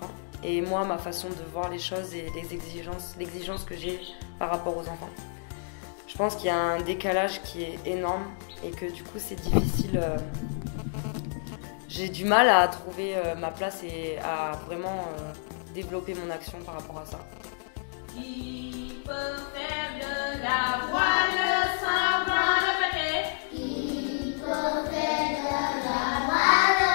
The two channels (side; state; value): right; silent; digital silence